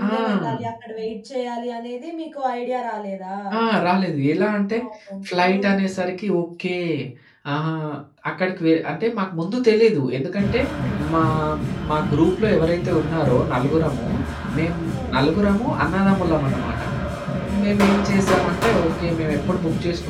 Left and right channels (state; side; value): identical; both; correlation 1.00